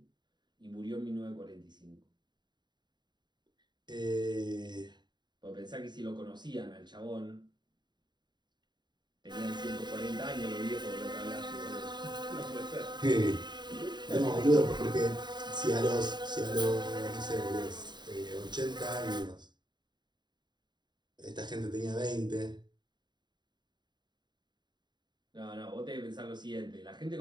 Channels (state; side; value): late; left; 0.21 ms